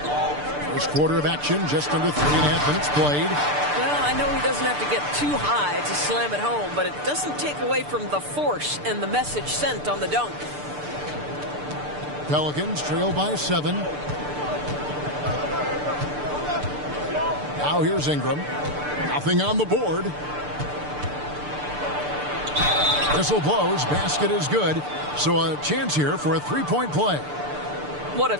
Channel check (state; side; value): late; left; 6.8 ms